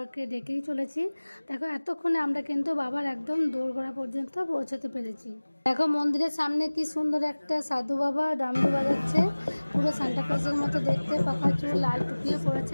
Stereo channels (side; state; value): both; inverted; correlation -1.00